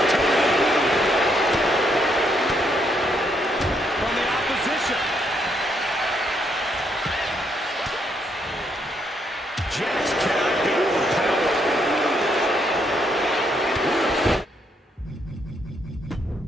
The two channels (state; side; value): normal; both; correlation 0.74